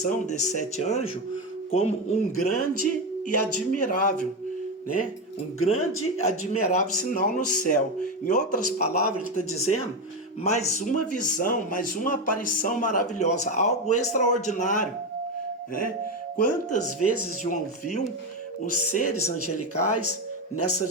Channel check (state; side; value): normal; both; correlation 0.13